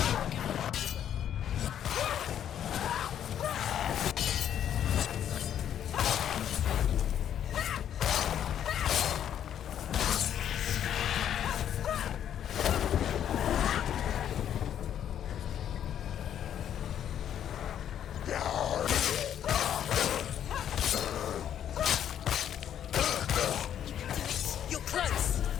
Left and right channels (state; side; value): quieter; right; 9.9 dB